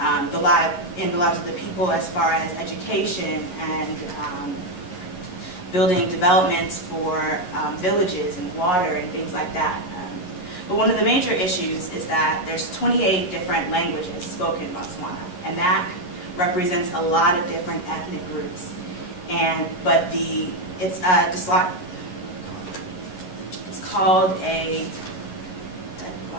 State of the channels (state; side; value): late; right; 11 ms